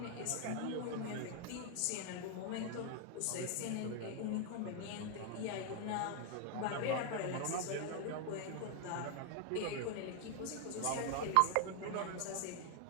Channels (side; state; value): both; different; correlation 0.00